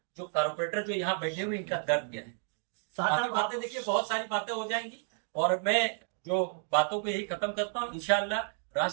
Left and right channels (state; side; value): silent; left; 57 dB below the other